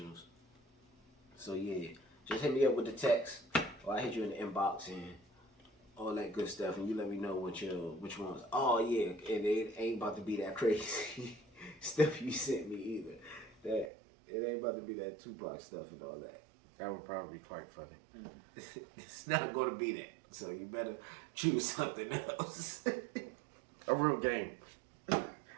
So yeah, just hit me up with the text, or I hit you in the inbox and all that good stuff, and you let me know which ones. Oh yeah, and it ain't about to be that crazy stuff you sent me either. That it ain't about to be that Tupac stuff and all that. That would probably be quite funny. It's not going to be that. So you better choose something else. A real game.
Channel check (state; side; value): drops out; left; at 13.9 s